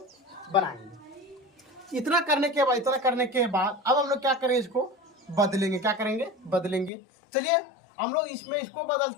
बनाएंगे। इतना करने के बाद अब हम लोग क्या करेंगे, इसको बदलेंगे। क्या करेंगे, बदलेंगे। चलिए हम लोग इसमें इसको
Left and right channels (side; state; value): right; drops out; at 6.9 s